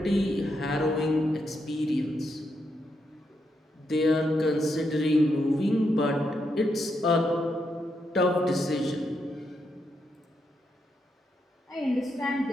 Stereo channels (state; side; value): normal; both; correlation 0.81